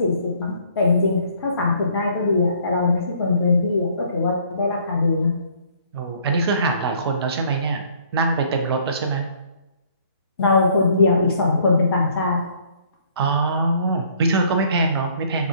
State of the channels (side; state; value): both; inverted; correlation -0.60